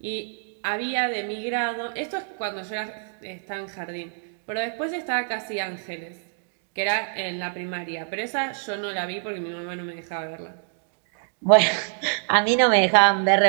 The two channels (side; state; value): left; silent; digital silence